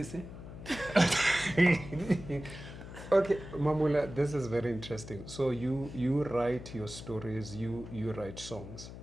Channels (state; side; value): noise; left; hum, 13 dB below the sound